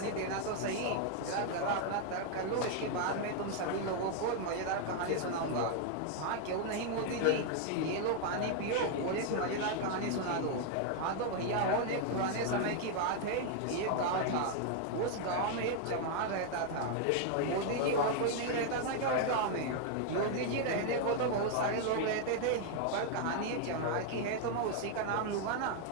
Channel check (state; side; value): different; both; correlation 0.00